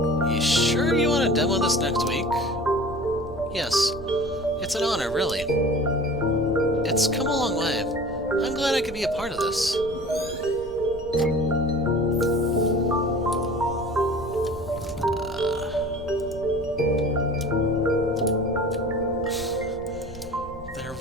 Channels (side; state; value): right; noise; rumble, 16 dB below the sound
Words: You sure you want to demo this next week? Yes. It's an honor, really. It's come a long way. I'm glad I could be a part of this. They're